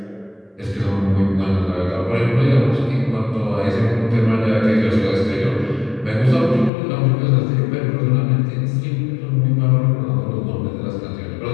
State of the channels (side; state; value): right; drops out; at 6.7 s